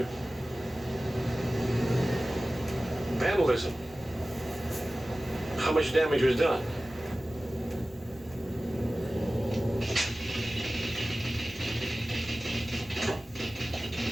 Vandalism. How much damage was done?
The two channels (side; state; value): both; normal; correlation 0.96